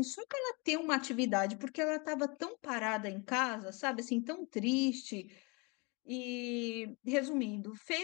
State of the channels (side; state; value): right; quieter; 29.5 dB